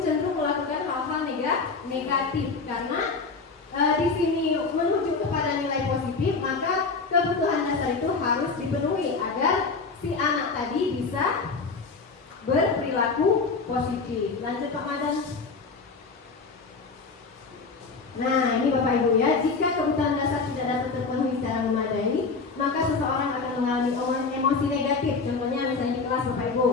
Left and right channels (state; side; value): quieter; right; 4.4 dB